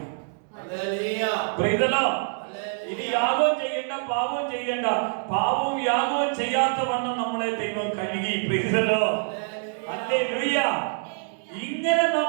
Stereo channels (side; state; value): left; silent; 61 dB below the other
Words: ഇനി യാഗവും ചെയ്യേണ്ട, പാപവും ചെയ്യേണ്ട. പാപവും യാഗവും ചെയ്യാത്ത വണ്ണം നമ്മളെ ദൈവം കഴുകി. ഹല്ലേലൂയ. ഇങ്ങനെ